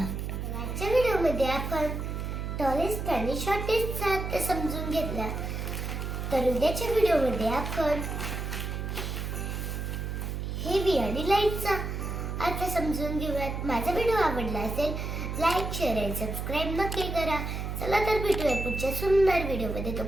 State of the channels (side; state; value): right; noise; hum, 4 dB below the sound